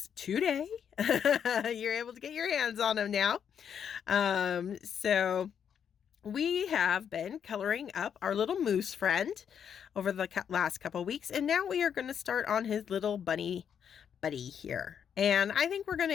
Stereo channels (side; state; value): right; quieter; 8.1 dB